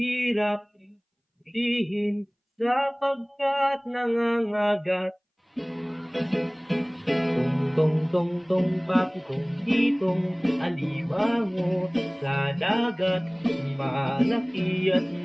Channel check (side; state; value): both; identical; correlation 1.00